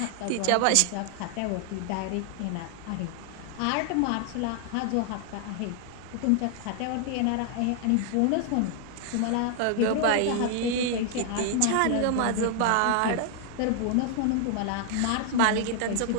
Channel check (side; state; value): both; different; correlation 0.00